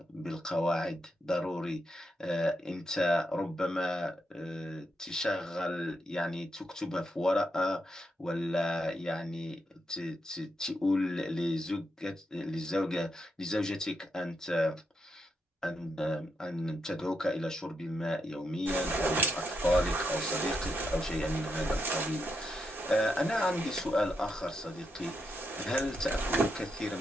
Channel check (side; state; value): both; normal; correlation 0.82